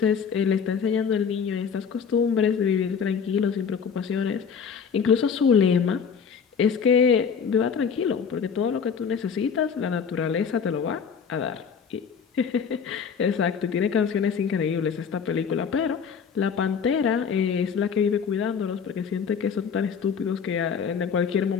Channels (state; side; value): quieter; right; 6.6 dB